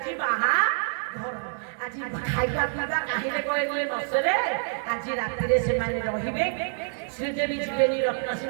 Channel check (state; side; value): silent; left; digital silence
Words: बाहा घर आज खाଇବା ପିଇବା କାହିଁରେ କହିଲେ ନସରେ ଆଜି ରାତିରେ ସେମାନେ ରହିବେ ଶ୍ରୀଦେବୀ ଯିବେନି ରତ୍ନ